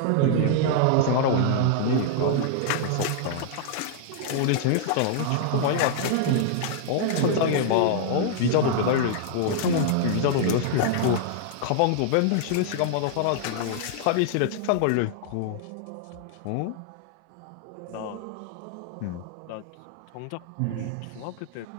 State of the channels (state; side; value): different; both; correlation -0.01